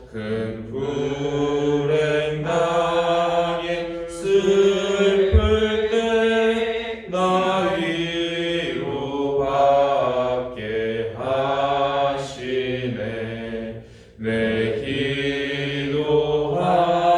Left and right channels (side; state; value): both; identical; correlation 1.00